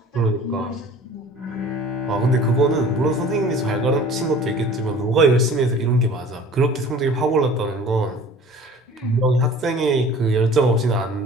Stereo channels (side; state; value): both; normal; correlation 0.45